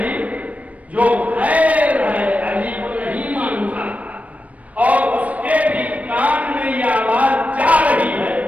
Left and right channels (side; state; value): left; late; 0.068 ms